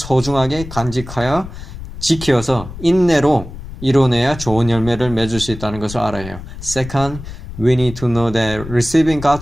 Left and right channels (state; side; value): noise; left; rumble, 12 dB below the sound